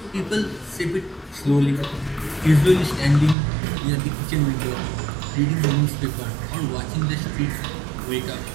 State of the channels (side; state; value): left; drops out; at 3.4 s